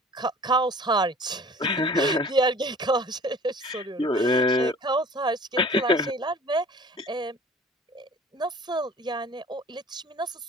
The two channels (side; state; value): both; normal; correlation 0.46